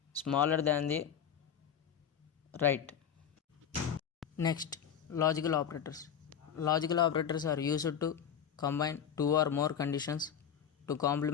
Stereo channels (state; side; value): quieter; right; 8.3 dB